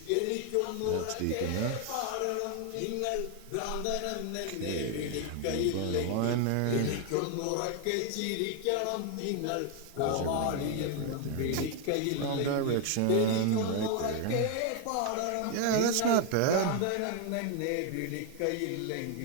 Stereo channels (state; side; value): different; both; correlation 0.00